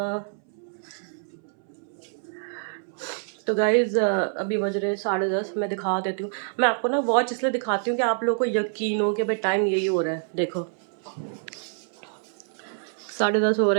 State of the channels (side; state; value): left; silent; 61 dB below the other